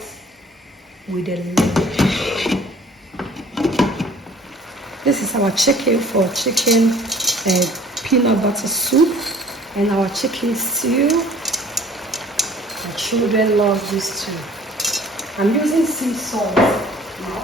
with a lid. This is our chicken for chicken peanut butter soup and our chicken stew. My children love this too. I'm using sea salt. I'll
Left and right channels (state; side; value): normal; both; correlation 0.51